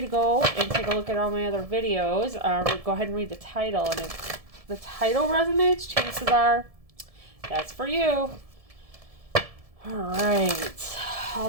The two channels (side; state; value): left; late; 1.7 ms